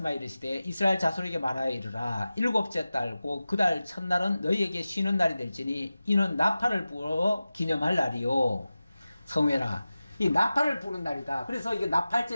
이르시되 이스라엘 자손에게 말하여 이르라. 7째 달 곧 그 달 첫날은 너희에게 쉬는 날이 될지니 이는 나팔을 불어 기념할 날이요. 성회라. 이 나팔을 부는 날이다. 그래서 이게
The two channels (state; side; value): inverted; both; correlation -0.95